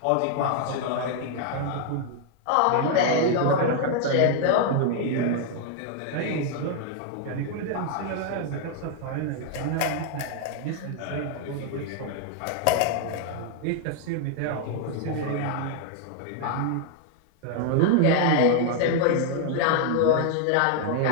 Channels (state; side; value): different; both; correlation 0.00